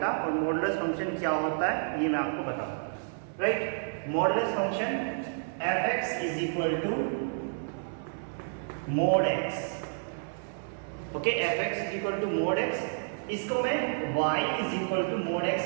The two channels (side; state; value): left; silent; 58 dB below the other